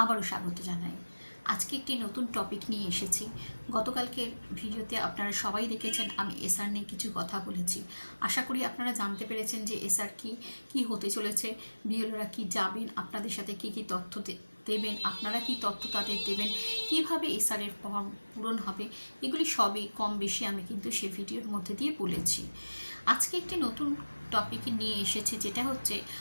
আবারও স্বাগত জানাই। আজকে একটি নতুন টপিক নিয়ে এসেছি। গতকালকের ভিডিওতে আপনারা সবাই দেখেছেন আমি এসআর নিয়ে কিছু কথা বলেছি। আশা করি আপনারা জানতে পেরেছেন যে এসআর কি হতে চলেছে, বিএলওরা কি যাবেন, আপনাদের সাথে কি তথ্য দেবেন, আপনারা কি তথ্য তাদের দেবেন, কিভাবে এসআরের ফর্ম পূরণ হবে, এগুলি সবই কম বেশি আমি কিন্তু সে ভিডিওর মধ্যে দিয়ে বলেছি। আজকে একটি নতুন টপিক নিয়ে এসেছে, যেটা হচ্ছে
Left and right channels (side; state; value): both; inverted; correlation -1.00